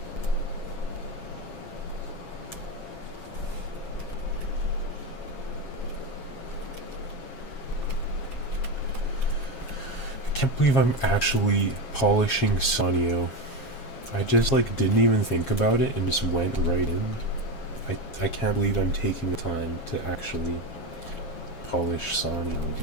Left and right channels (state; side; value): late; right; 7.3 ms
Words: I can't believe I'm actually polishing Sonio. I just like didn't even think about it and just went right in. I can't believe I'm taking the time to actually polish Sonio,